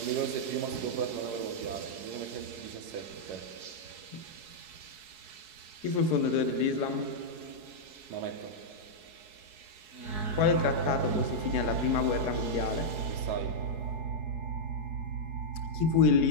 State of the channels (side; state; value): left; late; 4.7 ms